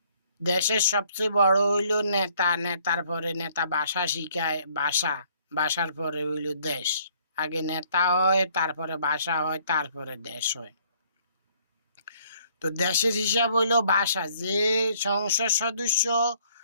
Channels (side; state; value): both; inverted; correlation -0.63